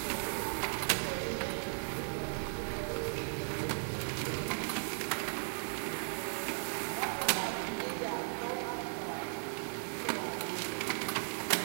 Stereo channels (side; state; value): left; silent; 53 dB below the other